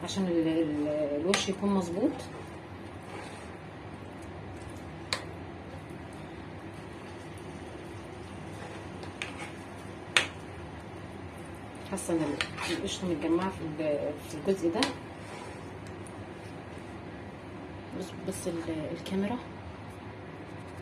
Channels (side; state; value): both; identical; correlation 1.00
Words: عشان الوش يكون مظبوط. حاسه ان القشطه متجمعه في الجزء ده. بس الكاميرا